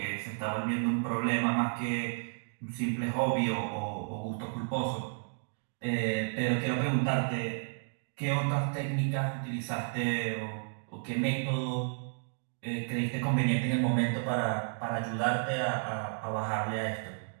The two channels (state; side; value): silent; left; digital silence